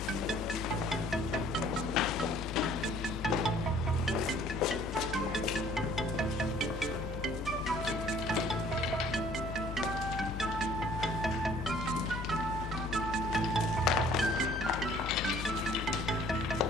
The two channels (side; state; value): both; normal; correlation 0.56